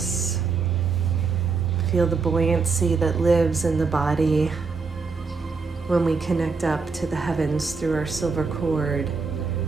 Feel the buoyancy that lives in the body when we connect up to the heavens through our silver cord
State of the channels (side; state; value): left; quieter; 4.8 dB